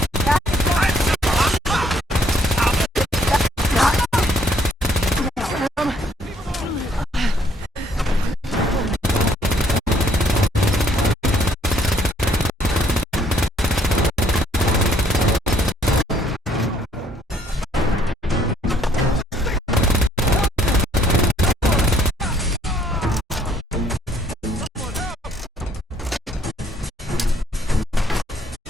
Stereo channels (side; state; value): both; normal; correlation 0.65